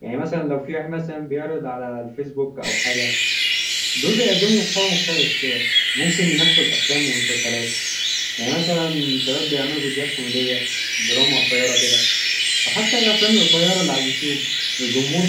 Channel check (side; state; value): both; identical; correlation 1.00